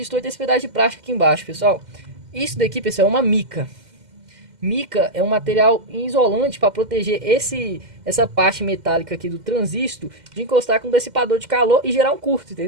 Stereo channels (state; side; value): late; left; 2.1 ms